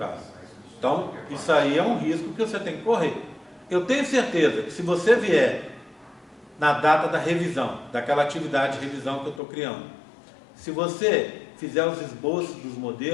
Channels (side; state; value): right; drops out; at 9.4 s